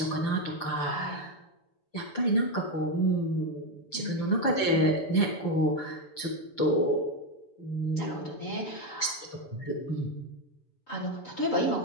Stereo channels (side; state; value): right; late; 7.0 ms